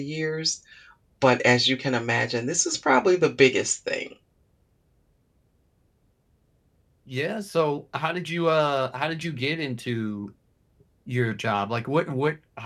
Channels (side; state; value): both; identical; correlation 1.00